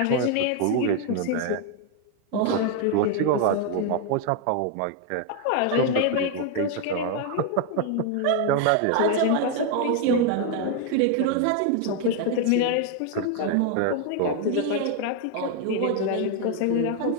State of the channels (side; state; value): both; different; correlation 0.00